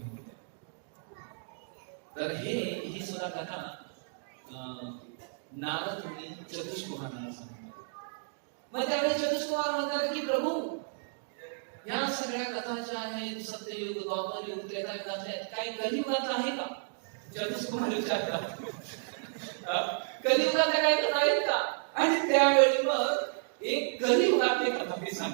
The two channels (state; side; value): silent; left; digital silence